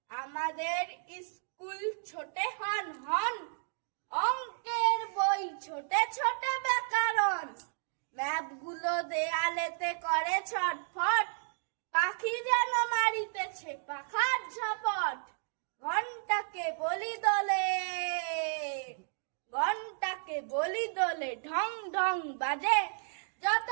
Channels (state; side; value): silent; left; digital silence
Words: আমাদের স্কুল ছোটে হন, অঙ্কের বই ছোটে ছোটে ব্যাকরণ। ম্যাপগুলো দেয়ালেতে করে ছটফট, পাখি যেন মারিতেছে পাখার ঝপট। ঘন্টাকে বলি দোলে ঢং ঢং বাজে, যত